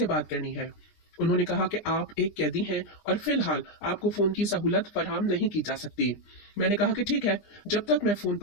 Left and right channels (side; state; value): right; late; 20 ms